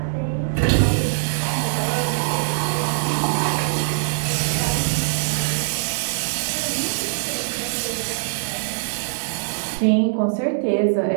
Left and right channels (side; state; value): left; silent; digital silence